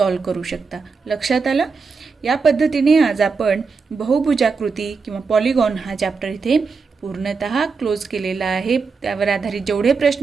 करू शकता. लक्षात आलं. या पद्धतीने आज आपण बहुभुजाकृती किंवा पॉलिगॉन हा चॅप्टर इथे पूर्णतः क्लोज केलेला आहे. त्यावर आधारित जेवढे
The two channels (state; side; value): quieter; left; 4.9 dB